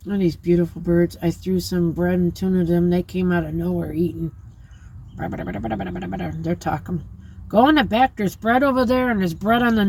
Look at these beautiful birds. I threw some bread and tuna to them. They came out of nowhere eating. They're talking. Go in the back. There's bread over there, and there's bread on the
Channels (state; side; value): identical; both; correlation 1.00